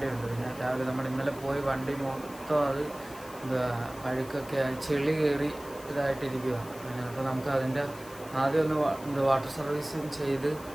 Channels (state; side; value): noise; left; hiss, 19 dB below the sound